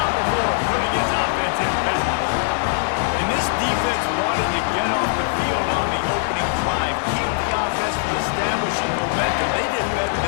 before putting his offense in business. And this defense wanted to get off the field on the opening drive, keep the offense from establishing momentum. They did better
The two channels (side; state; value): right; silent; 63 dB below the other